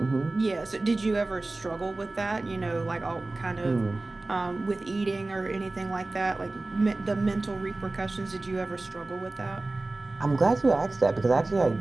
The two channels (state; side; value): quieter; left; 3.1 dB